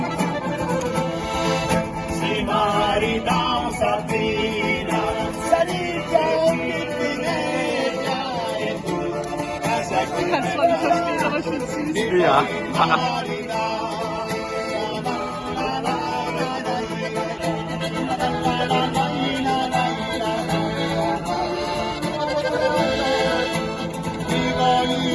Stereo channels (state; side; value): identical; both; correlation 1.00